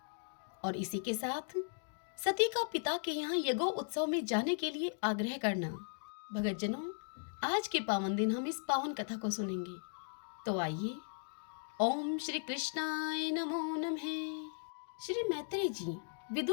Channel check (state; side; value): silent; right; digital silence